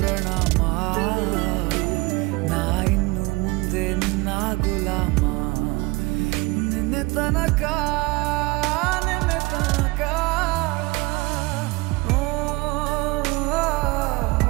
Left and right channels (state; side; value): quieter; left; 23.3 dB